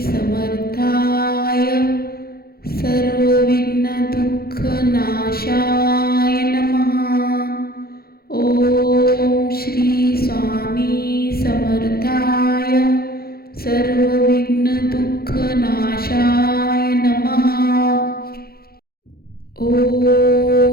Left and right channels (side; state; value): right; late; 0.44 ms